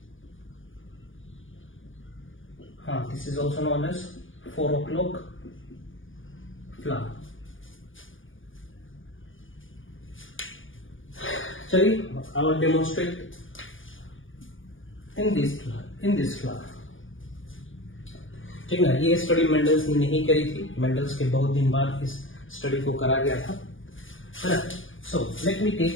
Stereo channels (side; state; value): right; late; 0.58 ms